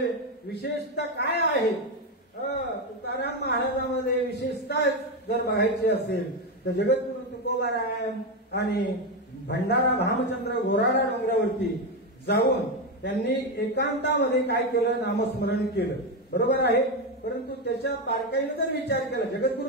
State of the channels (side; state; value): both; normal; correlation 0.10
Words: विशेषता काय आहे? तुकाराम महाराजांमध्ये विशेषता जर बघायची असेल तर जगद्गुरु तुकोबाराय आणि भंडारा भामचंद्र घोराडा डोंगरावरती जाऊन त्यांनी एकांतामध्ये काय केलं? नामस्मरण केलं. बरोबर आहे. परंतु त्याच्या बारकाईने जर विचार केला,